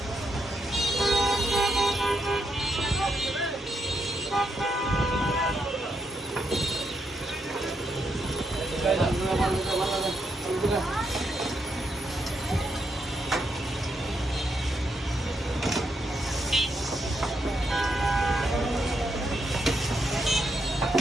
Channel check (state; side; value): normal; both; correlation 0.79